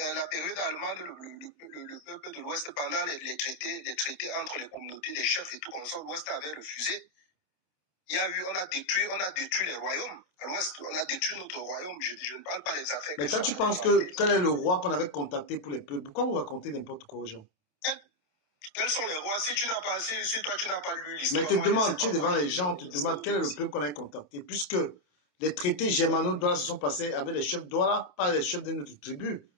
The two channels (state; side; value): late; right; 27 ms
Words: période allemande, le peuple de l'Ouest, pendant les traités entre les communautés, les chefs et tout comme ça, l'Ouest avait refusé. on a détruit les royaumes. À l'ouest, on a détruit notre royaume. Je ne parle pas des affaires. Mais toi, tu penses que quel est le roi qu'on avait contacté pour les peuples? Pourquoi vous racontez n'importe quoi aux gens? Quels sont les rois? Si toi, tu n'as pas lu l'histoire. Mais te demande, tu es devant les gens, on te demande quel est le peuple qu'on a contacté. Puisque les traités germano-douala se sont passés avec les chefs douala, pas les chefs de notre tribu.